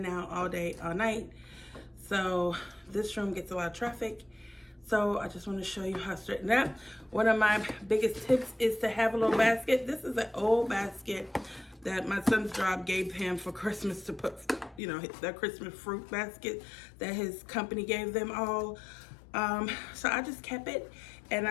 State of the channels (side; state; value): right; drops out; at 14.8 s